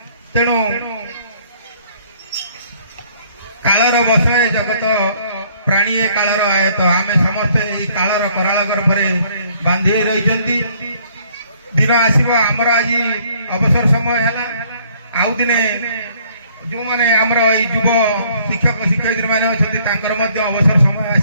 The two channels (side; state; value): both; inverted; correlation -0.62